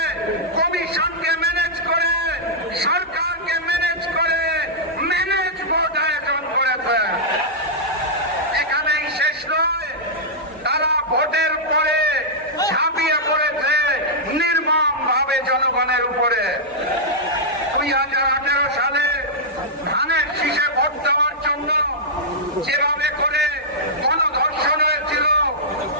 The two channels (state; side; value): normal; both; correlation -0.10